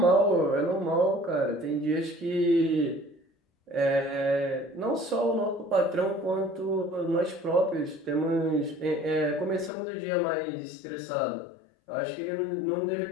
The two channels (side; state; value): right; drops out; at 9.7 s